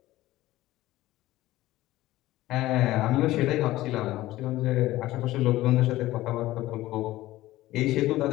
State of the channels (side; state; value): right; quieter; 16.5 dB